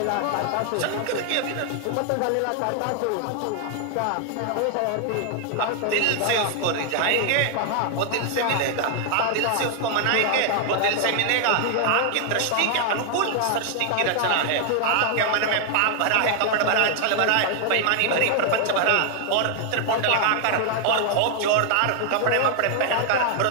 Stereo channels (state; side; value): different; both; correlation 0.00